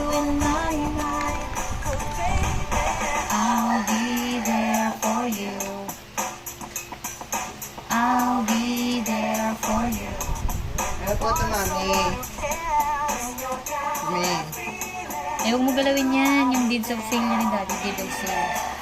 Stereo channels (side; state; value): both; identical; correlation 1.00